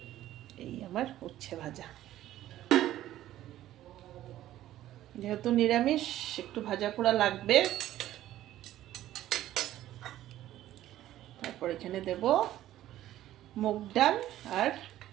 এই আমার উচ্ছে ভাজা, যেহেতু নিরামিষ একটু ভাজা পোড়া লাগবে। তারপর এখানে দেব মুগ ডাল আর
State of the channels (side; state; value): left; quieter; 13.6 dB